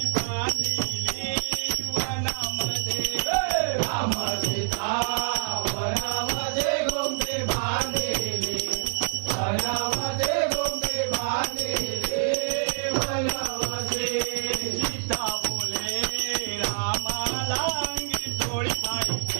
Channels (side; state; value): left; silent; digital silence